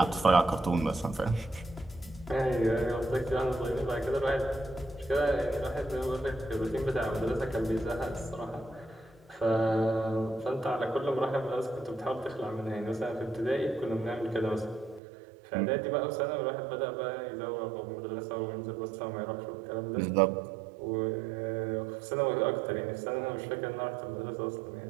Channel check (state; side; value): drops out; left; at 15.0 s